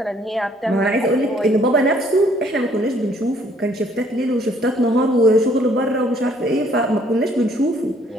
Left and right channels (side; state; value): both; normal; correlation 0.63